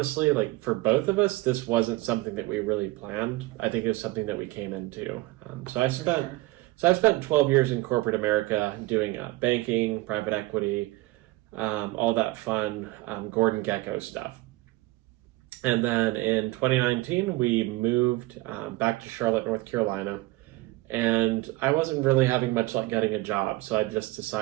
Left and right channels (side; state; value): left; quieter; 20.3 dB